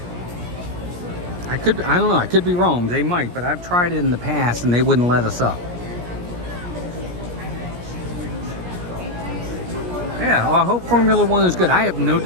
I don't know, I could be wrong, they might, but I've tried it in the past and they wouldn't let us up. Yeah, well, I hope Formula One is good. I have no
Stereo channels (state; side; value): late; left; 17 ms